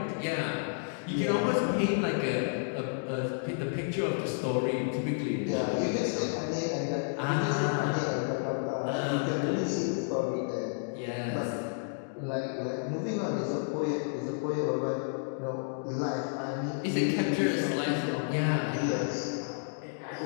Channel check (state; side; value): silent; right; digital silence